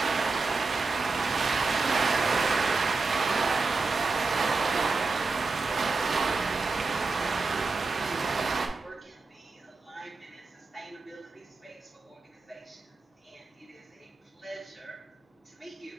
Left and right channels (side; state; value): left; quieter; 4.0 dB